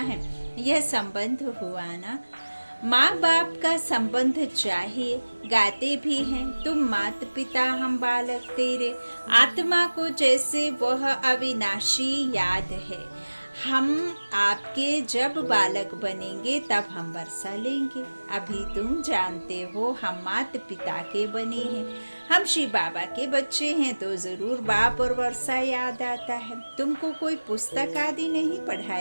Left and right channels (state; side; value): inverted; both; correlation -1.00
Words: हैं। यह संबंध हुआ ना। माँ बाप का संबंध चाहिए। गाते भी हैं तुम माता पिता हम बालक तेरे। आत्मा को जैसे वह अविनाशी याद है। हम आपके जब बालक बनेंगे तब हम वर्षा लेंगे। अभी तुम जानते हो हम माता पिता के बने हैं। हम श्री बाबा के बच्चे हैं तो जरूर बाप और वर्षा याद आता है। तुमको कोई पुस्तक आदि नहीं